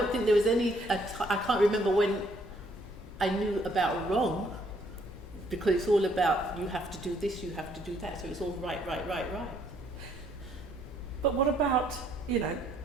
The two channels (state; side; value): normal; both; correlation 0.67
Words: think there was I can't remember when I knew about wrong, because it's all about you have to do this, you have to do that, so it's all right. But what about,